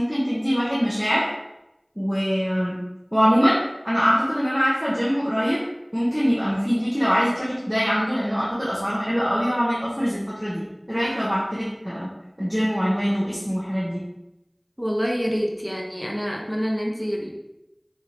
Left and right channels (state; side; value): identical; both; correlation 1.00